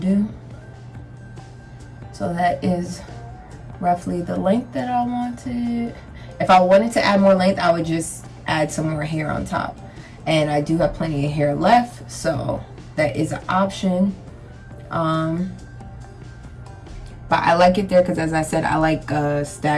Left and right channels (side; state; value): both; identical; correlation 1.00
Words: So that is roughly the length that I wanted. If I wanted to add more length, I would just add some more hair on top, and I do have plenty of hair left, so that is an option. But I like it there because, as I said, I like a